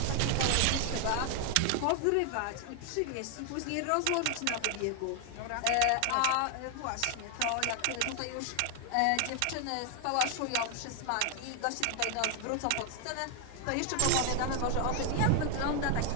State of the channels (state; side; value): different; both; correlation 0.00